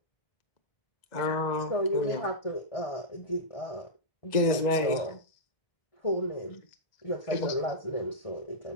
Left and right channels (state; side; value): late; right; 1.9 ms